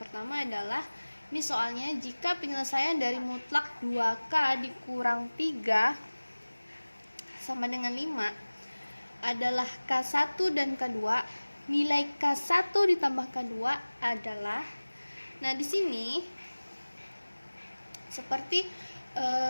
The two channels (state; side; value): inverted; both; correlation -1.00